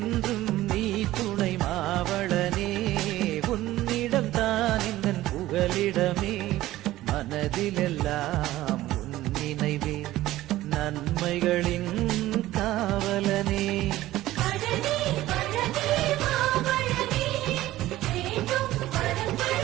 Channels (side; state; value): left; quieter; 15.7 dB